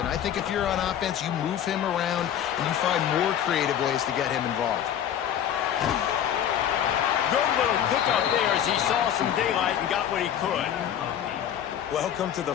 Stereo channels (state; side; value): quieter; right; 9.9 dB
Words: I think if you're on offense, you move him around and you find more creative ways to get him involved. Good little pickup there as he saw some daylight and got what he could. Welcome to the